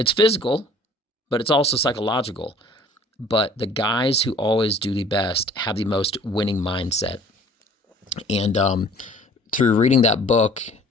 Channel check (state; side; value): normal; both; correlation 0.51